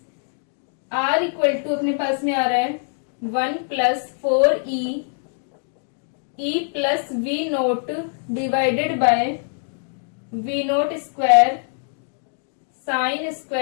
r इक्वल टू अपने पास में आ रहा है 1 plus 4 e plus we naught divided by v naught square sine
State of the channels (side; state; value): right; silent; 61 dB below the other